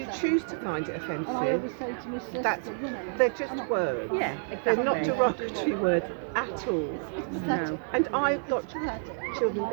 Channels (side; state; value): left; silent; 58 dB below the other